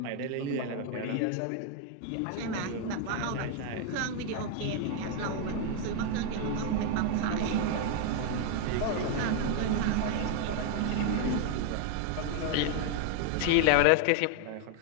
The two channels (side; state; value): both; different; correlation 0.00